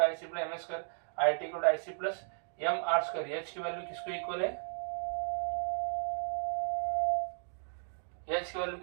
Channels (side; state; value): left; silent; digital silence